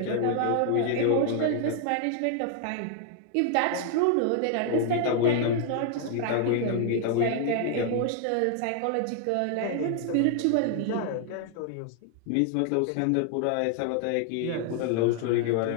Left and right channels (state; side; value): different; both; correlation 0.00